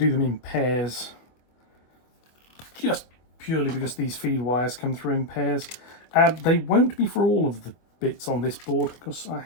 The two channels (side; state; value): right; late; 24 ms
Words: them in pairs, just purely because these feed wires come through in pairs. They won't be for all of the bits on this board because I